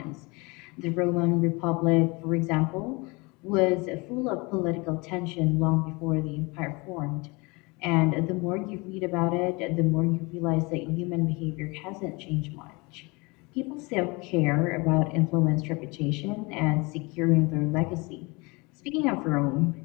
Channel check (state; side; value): quieter; right; 26.6 dB